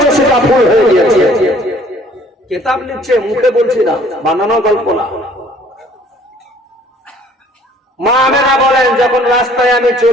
সেটা ফুল হয়ে গিয়েছে। কিতাব লিখছে, মুখে বলছি না, বানানো গল্প না। মা আমেনা বলেন, যখন রাস্তায় আমি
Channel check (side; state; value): both; normal; correlation 0.56